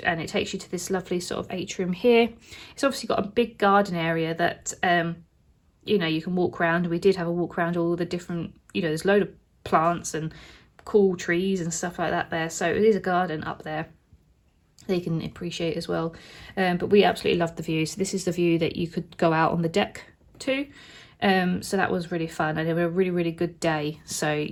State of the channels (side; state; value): both; identical; correlation 1.00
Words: and it takes you to this lovely sort of atrium here. It's obviously got a big garden area that you know, you can walk around. We did have a walk around all the different, you know, there's a load of plants and cool trees and stuff like that there, so it is a garden up there that you can appreciate as well. But we absolutely loved the view. So this is the view that you could go out on the deck to. So that was really fun, and it was a really, really good day. So,